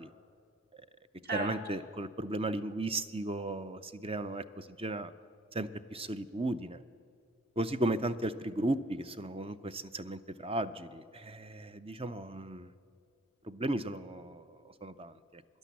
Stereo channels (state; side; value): normal; both; correlation 0.56